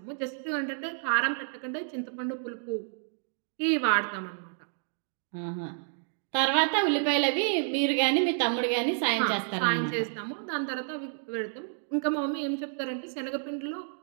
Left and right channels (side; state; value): left; silent; digital silence